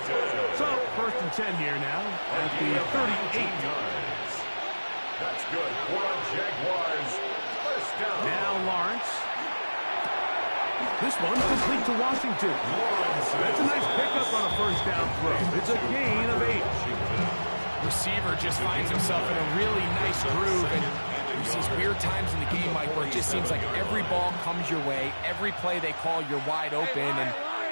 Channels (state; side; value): inverted; both; correlation -1.00